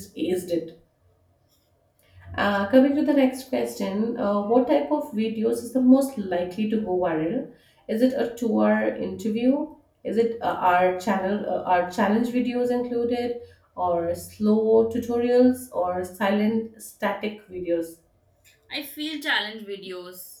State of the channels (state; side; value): identical; both; correlation 1.00